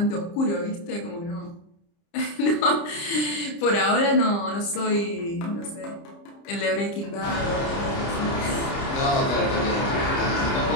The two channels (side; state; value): right; late; 30 ms